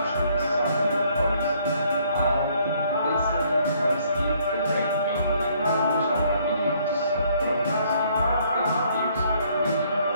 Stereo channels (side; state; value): both; inverted; correlation -0.65